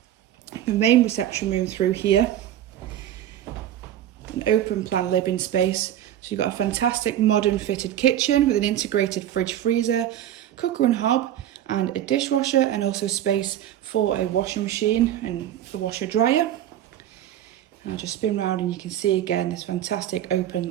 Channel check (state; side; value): quieter; left; 11.6 dB